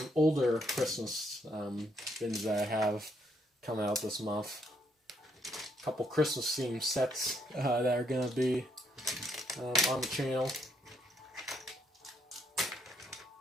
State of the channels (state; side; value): normal; both; correlation 0.73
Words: older Christmas bins that I have coming out this month. A couple Christmas themed sets that are going to be on the channel.